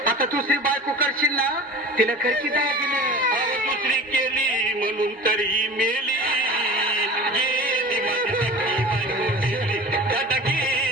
आता दुसरी बायको करशील ना, तिला करकी दागिने. दुसरी केली म्हणून तरी मेली. गेली माझी सख्खी बायको गेली, दादा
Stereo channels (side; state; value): both; normal; correlation 0.37